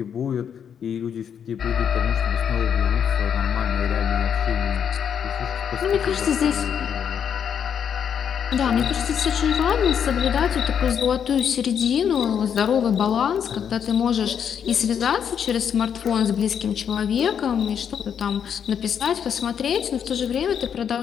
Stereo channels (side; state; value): right; quieter; 8.1 dB